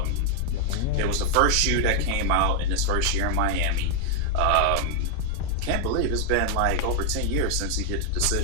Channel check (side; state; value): both; different; correlation 0.00